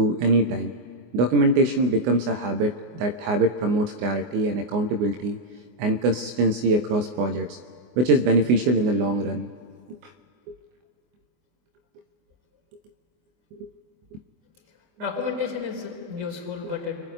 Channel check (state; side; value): late; left; 24 ms